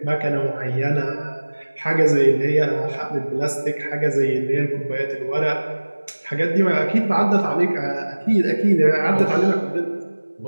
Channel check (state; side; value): inverted; both; correlation -1.00